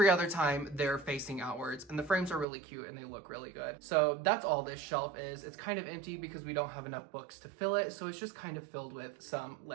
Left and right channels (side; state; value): left; drops out; at 2.5 s